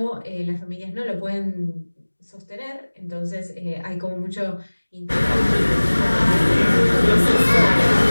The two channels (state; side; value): inverted; both; correlation -1.00